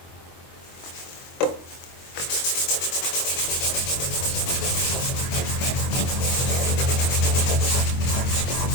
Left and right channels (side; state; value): right; late; 23 ms